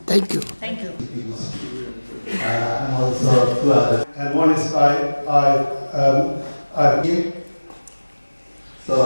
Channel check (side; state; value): both; inverted; correlation -1.00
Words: Thank you. Thank you. I'm also two others. And one is him. So